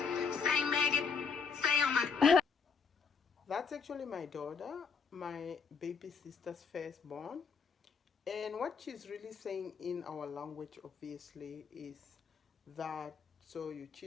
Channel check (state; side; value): quieter; right; 5.7 dB